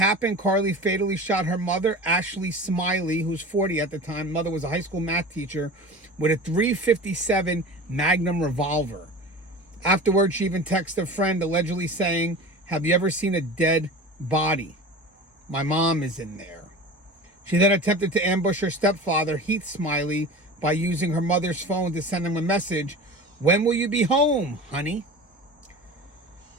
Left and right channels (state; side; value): normal; both; correlation 0.34